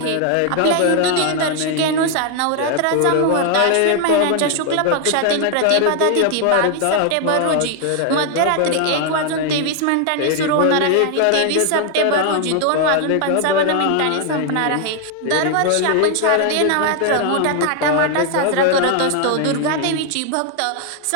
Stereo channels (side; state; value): both; different; correlation 0.00